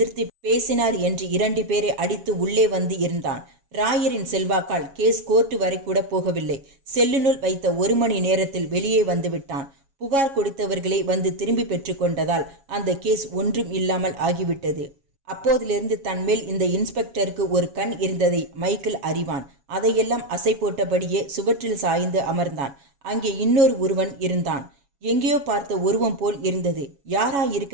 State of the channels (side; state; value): left; late; 7.2 ms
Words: பேசினார் என்று 2 பேரை அடித்து உள்ளே வந்து இருந்தான். ராயரின் செல்வாக்கால் கேஸ் கோர்ட்டு வரை கூட போகவில்லை. செல்லுனுள் வைத்த 1 மணி நேரத்தில் வெளியே வந்து விட்டான். புகார் கொடுத்தவர்களை வந்து திரும்பி பெற்று கொண்டதால் அந்த கேஸ் ஒன்றும் இல்லாமல் ஆகிவிட்டது. அப்போதிலிருந்து தன்மேல் இந்த இன்ஸ்பெக்டருக்கு ஒரு கண் இருந்ததை மைக்கேல் அறிவான். அதையெல்லாம் அசை போட்டபடியே சுவற்றில் சாய்ந்து அமர்ந்தான். அங்கே இன்னொரு உருவன் இருந்தான். எங்கேயோ பார்த்த உருவம் போல் இருந்தது.